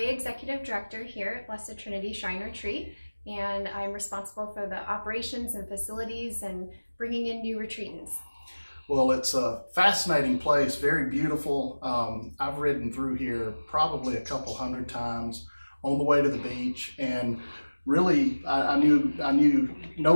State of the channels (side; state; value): both; inverted; correlation -1.00